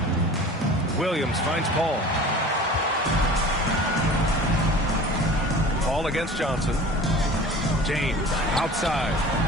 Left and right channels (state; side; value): normal; both; correlation 0.40